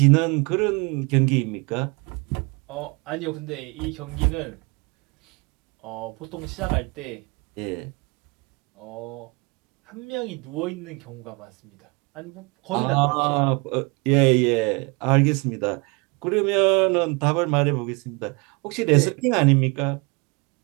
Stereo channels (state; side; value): quieter; left; 29.3 dB